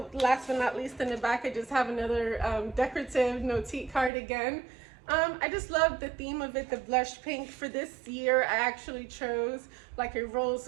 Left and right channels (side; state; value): left; drops out; at 4.1 s